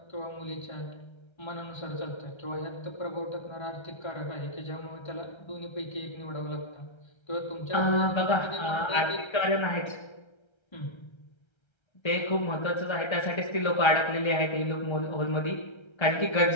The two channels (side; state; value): right; late; 1.3 ms